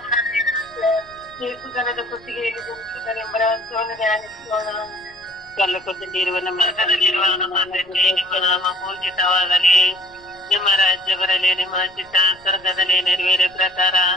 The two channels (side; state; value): left; noise; rumble, 28 dB below the sound